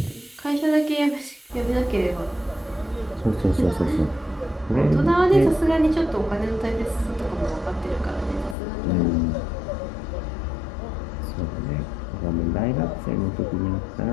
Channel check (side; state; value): right; drops out; at 8.6 s